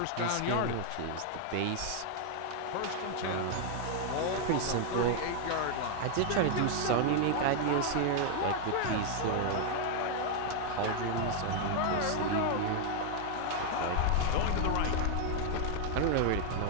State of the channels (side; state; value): both; different; correlation 0.00